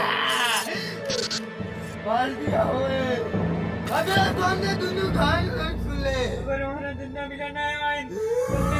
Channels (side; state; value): both; identical; correlation 1.00